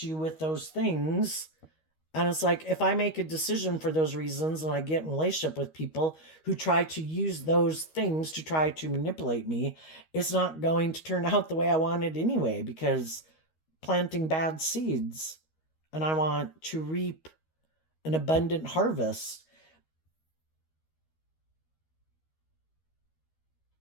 you with those things. And it's like, if I make a decision for those reasons and I get in a relationship with people who try to use those things to try to manipulate me, it's not going to turn out the way I want it anyway, because planting bad seeds, and I want to reap an abundant harvest.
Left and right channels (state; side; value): late; right; 13 ms